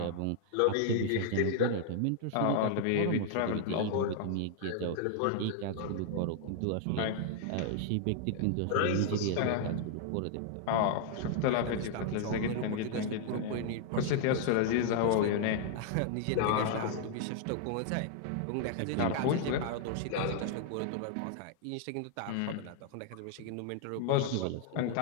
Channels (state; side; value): different; both; correlation -0.01